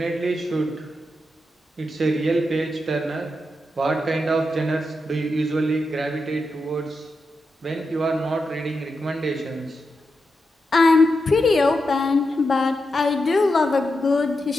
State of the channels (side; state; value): both; normal; correlation 0.87